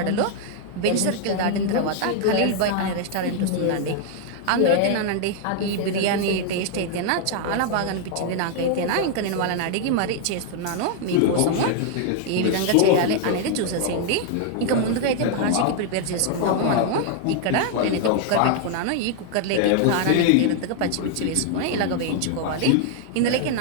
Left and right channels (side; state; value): both; different; correlation 0.00